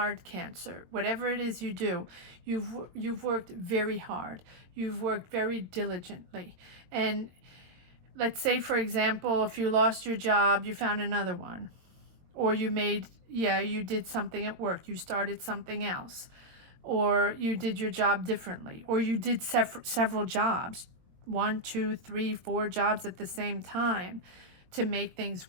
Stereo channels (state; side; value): late; left; 22 ms